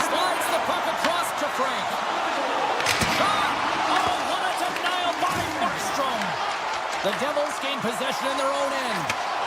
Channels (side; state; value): both; identical; correlation 1.00